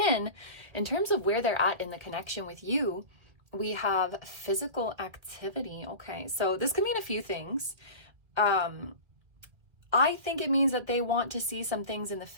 in terms of where they're at in the connection with you, we have physical activity. Okay, so this could mean a few things. I think it means that they want to see some things in the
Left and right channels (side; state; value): left; late; 1.8 ms